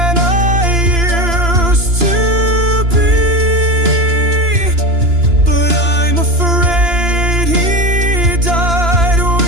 I used to be, but I'm afraid he died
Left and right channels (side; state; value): left; late; 2.9 ms